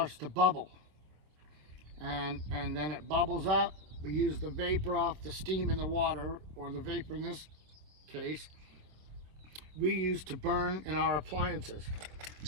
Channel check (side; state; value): left; late; 27 ms